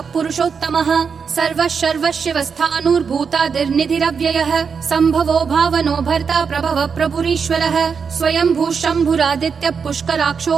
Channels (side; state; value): left; quieter; 6.0 dB